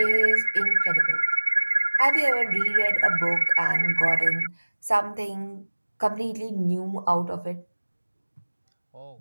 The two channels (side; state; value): both; inverted; correlation -1.00